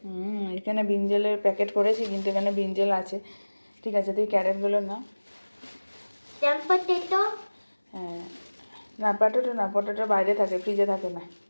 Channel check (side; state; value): both; inverted; correlation -1.00